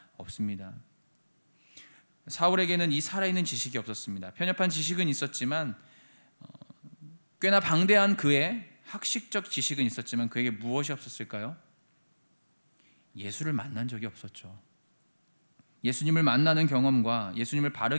없습니다. 사울에게는 이 살아있는 지식이 없었습니다. 편협한 지식은 있었지만 꽤나 방대한 그의 학식적 지식은 있었지만 그에게 무엇이 없었을까요? 예수를 만난 적이 없었죠. 예수님을 만나는 경험과 예수님을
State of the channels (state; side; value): inverted; both; correlation -1.00